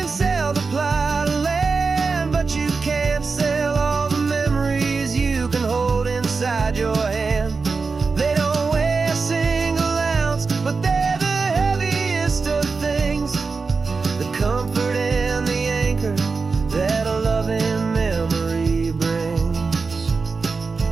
sell the plot of land, but you can't sell all the memories you can hold inside your hand. They don't weigh a single ounce, but they're the heaviest of things, the comfort and the anchor that a loving memory brings.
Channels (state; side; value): quieter; left; 4.5 dB